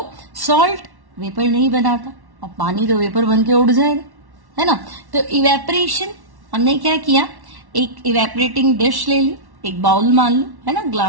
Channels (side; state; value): left; late; 1.1 ms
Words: सॉल्ट वेपर नहीं बनाता और पानी तो वेपर बन के उड़ जाएगा, है ना। तो इवेपोरेशन हमने क्या किया, एक इवेपोरेटिंग डिश ले ली, एक बाउल मान लो, है ना,